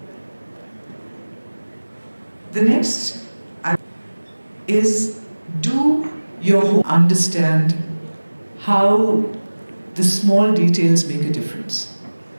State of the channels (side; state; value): both; inverted; correlation -1.00